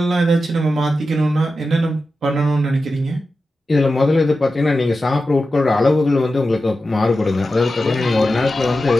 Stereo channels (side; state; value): both; normal; correlation 0.92